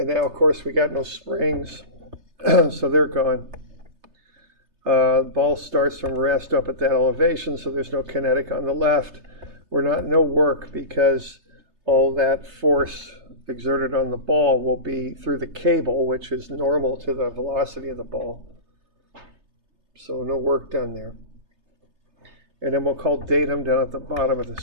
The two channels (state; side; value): late; left; 3.3 ms